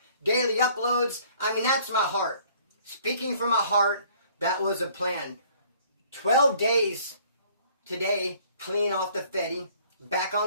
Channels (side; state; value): both; inverted; correlation -0.57